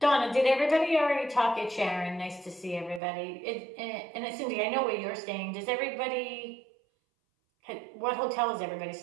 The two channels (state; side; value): drops out; left; at 3.0 s